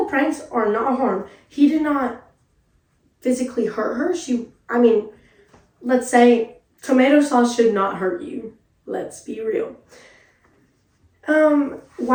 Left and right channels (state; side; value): identical; both; correlation 1.00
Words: pranks are not harm. He did not physically hurt her. Let's say tomato sauce should not hurt you. Let's be real.